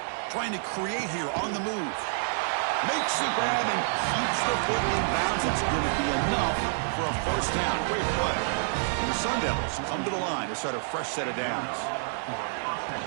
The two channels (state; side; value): silent; left; digital silence